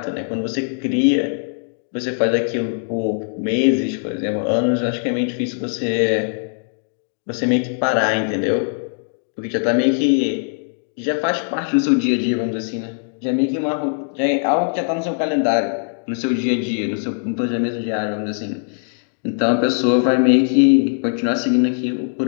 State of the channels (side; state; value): right; silent; digital silence